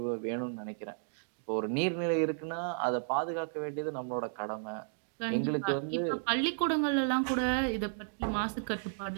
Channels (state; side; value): silent; left; digital silence